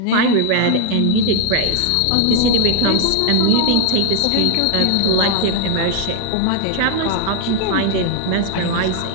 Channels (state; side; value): different; both; correlation 0.00